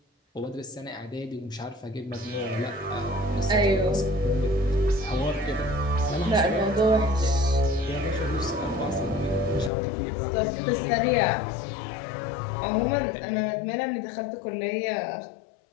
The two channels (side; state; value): right; drops out; at 9.7 s